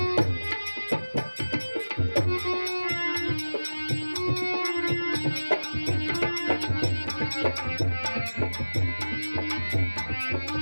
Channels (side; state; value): both; inverted; correlation -1.00